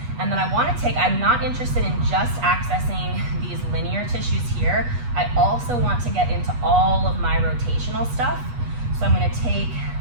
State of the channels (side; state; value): left; late; 8.3 ms